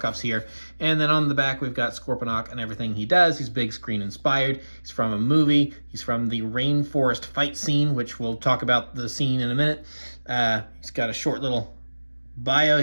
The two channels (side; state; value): both; inverted; correlation -1.00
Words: here. And then on the back, we've got Scorponok and everything he does. He's big screen inspired. He's from a movie. He's from the rainforest fight scene, which we'll talk about the scene in a minute. He's got a short little bio